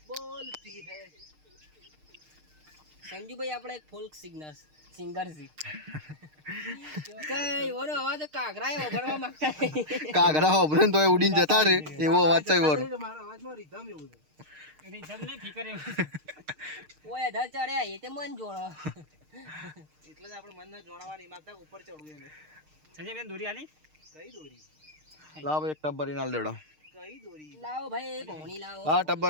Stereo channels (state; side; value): late; left; 6.5 ms